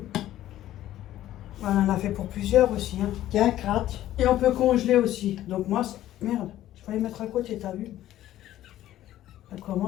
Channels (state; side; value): quieter; right; 13.5 dB